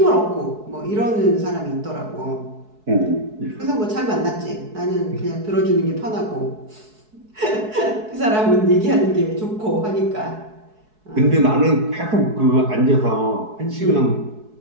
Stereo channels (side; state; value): left; late; 4.7 ms